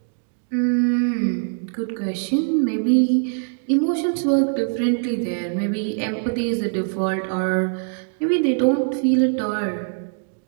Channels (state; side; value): silent; left; digital silence